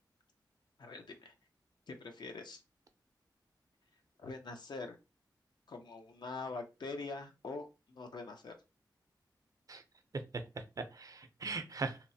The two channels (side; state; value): both; normal; correlation 0.48